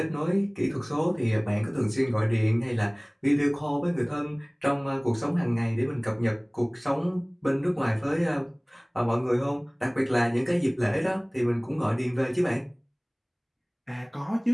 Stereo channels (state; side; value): identical; both; correlation 1.00